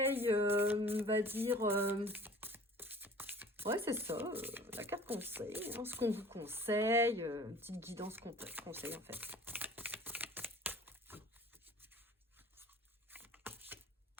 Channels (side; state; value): both; normal; correlation 0.46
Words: on va dire... ouais, c'est ça, la carte conseil, hein, ce qu'on vous conseille, une petite guidance conseil en fait.